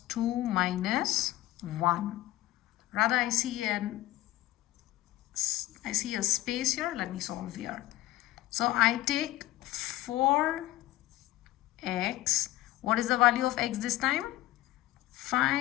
2 minus 1. Rather, I see a space here. Let me solve here. So I take 4x. What is the value of x this time?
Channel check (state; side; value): quieter; right; 16.0 dB